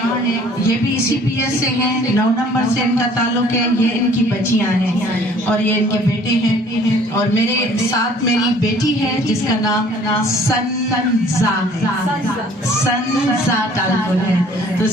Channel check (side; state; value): both; normal; correlation 0.54